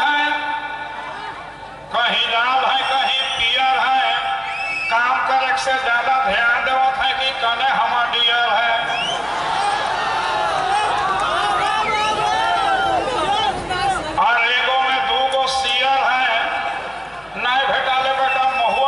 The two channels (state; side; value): identical; both; correlation 1.00